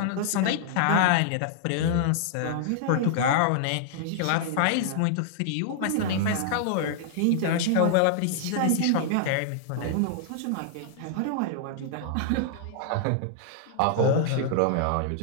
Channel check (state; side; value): different; both; correlation -0.01